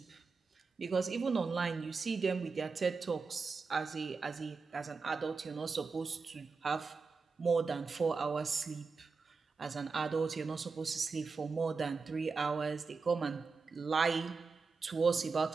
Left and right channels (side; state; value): left; quieter; 4.6 dB